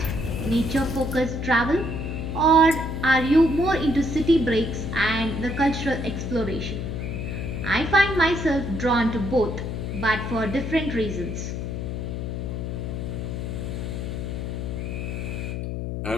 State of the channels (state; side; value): noise; left; hum, 4 dB below the sound